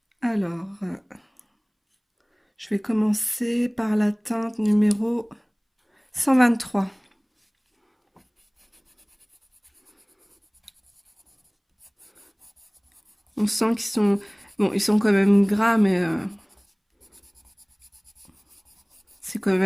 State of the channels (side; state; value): both; identical; correlation 1.00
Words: Alors, je vais commencer par la teinte numéro 123. On sent qu'ils sont... Bon, ils sont quand même gras, mais c'est quand